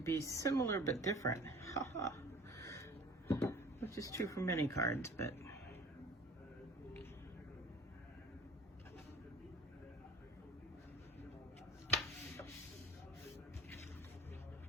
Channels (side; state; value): both; normal; correlation 0.44